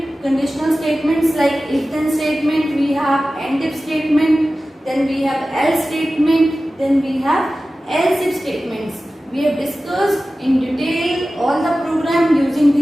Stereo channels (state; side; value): normal; both; correlation 0.95